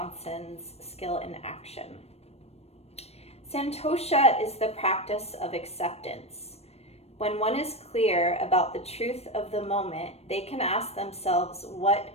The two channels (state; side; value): late; right; 0.30 ms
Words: Skill in Action. Santosha is the practice of acceptance. When one is clear about the truth of the moment, they can ask themselves what